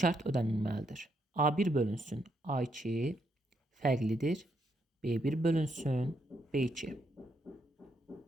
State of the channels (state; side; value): normal; both; correlation 0.77